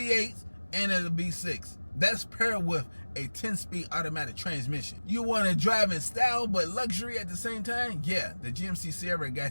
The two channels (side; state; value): both; inverted; correlation -1.00